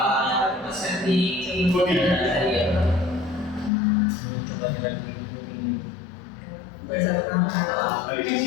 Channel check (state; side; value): drops out; right; at 3.7 s